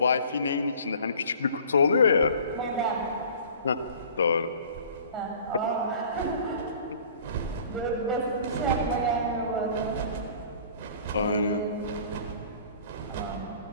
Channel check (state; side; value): inverted; both; correlation -0.47